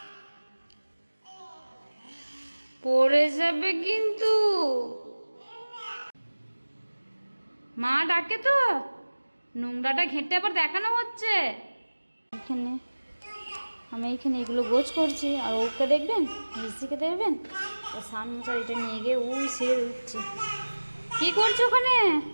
পড়ে যাবে কিন্তু। মা ডাকে তো, নোংরাটা ঘেঁটে আবার দেখানো হচ্ছে এখানে। আমি এইখানে এগুলো গোছ করছি, আর ওকে দেখবেন, মিষ্টিকে দেখবেন, ও সান মোচার এটা নিয়ে গিয়ে উই সিঁড়ে উঠছে। কি করছো ওখানে?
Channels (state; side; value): inverted; both; correlation -1.00